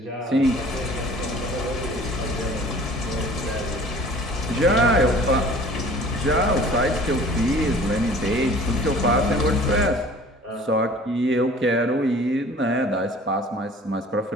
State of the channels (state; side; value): normal; both; correlation 0.48